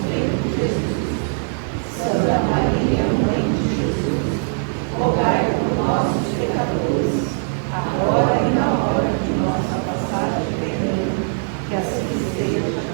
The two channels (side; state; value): left; silent; 65 dB below the other